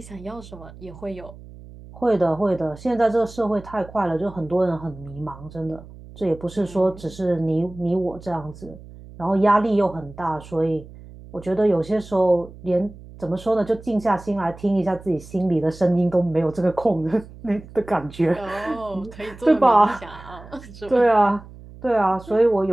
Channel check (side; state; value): right; noise; hum, 18 dB below the sound